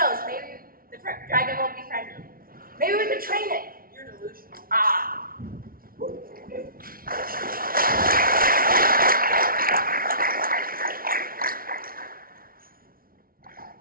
maybe the dragon will be friendly. Maybe we could train it. You're delusional. Ah.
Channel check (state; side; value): late; left; 0.43 ms